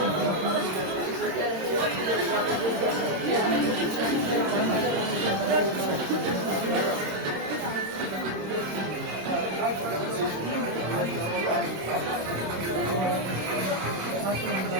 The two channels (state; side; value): late; left; 26 ms